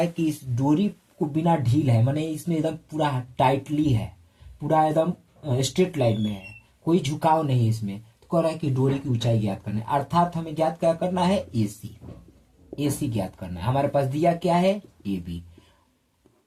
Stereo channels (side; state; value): both; identical; correlation 1.00